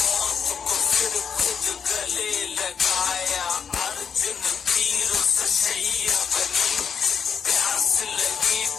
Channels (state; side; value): quieter; right; 6.8 dB